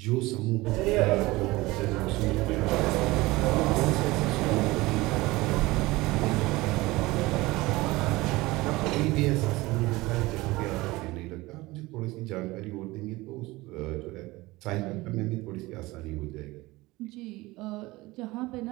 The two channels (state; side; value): quieter; left; 20.5 dB